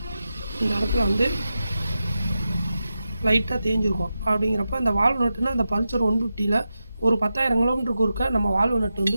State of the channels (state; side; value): inverted; both; correlation -0.90